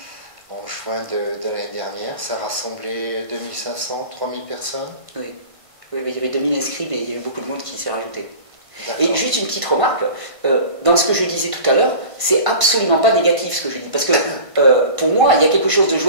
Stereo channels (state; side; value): late; left; 1.5 ms